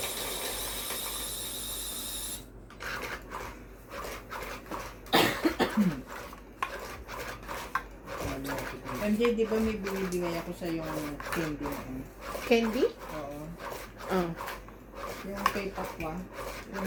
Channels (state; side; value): identical; both; correlation 1.00